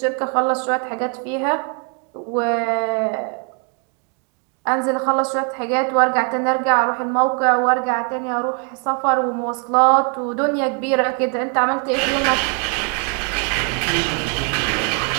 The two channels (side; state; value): left; quieter; 36.8 dB